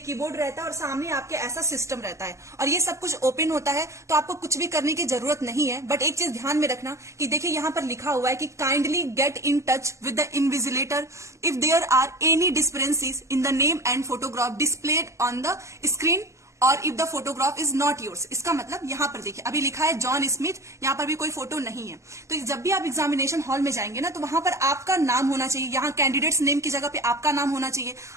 रहता है और सामने आपके ऐसा सिस्टम रहता है और ये सब कुछ ओपन होता है, तो आपको कुछ भी करने की जरूरत नहीं है। बट एक चीज ध्यान में रखना कि देखिए यहाँ पर लिखा हुआ है कि kindly get in touch with the invigilator if there are any discrepancies in the name and photograph displayed on the screen और if the photograph is not yours. इसका मतलब यहाँ पर देखिए अभी लिखा है जॉन स्मिथ, यहाँ पर भी कोई फोटो नहीं है। तो जब भी आप एग्जामिनेशन हॉल में जाएंगे ना, तो वहां पर आपका नाम होना चाहिए, यहाँ कैंडिडेट्स नेम की जगह पे आपका नाम होना चाहिए,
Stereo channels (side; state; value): left; late; 0.14 ms